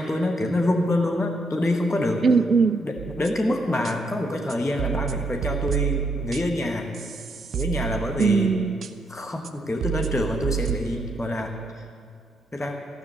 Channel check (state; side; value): normal; both; correlation 0.76